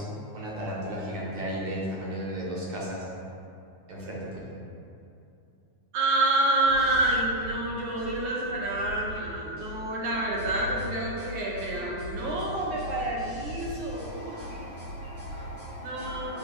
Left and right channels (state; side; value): late; left; 9.6 ms